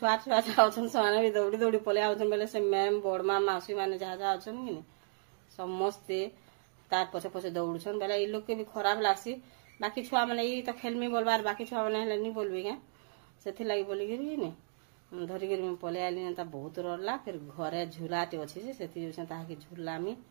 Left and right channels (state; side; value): silent; left; digital silence